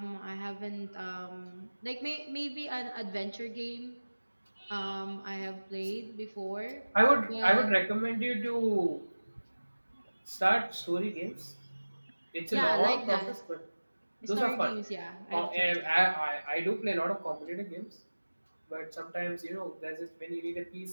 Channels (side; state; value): both; inverted; correlation -1.00